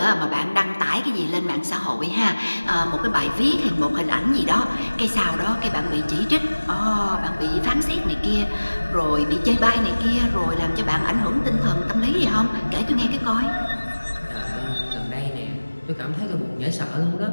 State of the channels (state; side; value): inverted; both; correlation -1.00